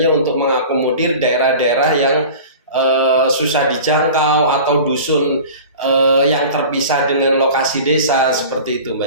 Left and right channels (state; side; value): inverted; both; correlation -0.39